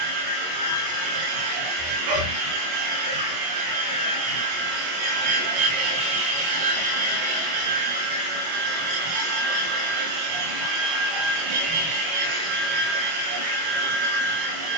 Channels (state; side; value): late; left; 25 ms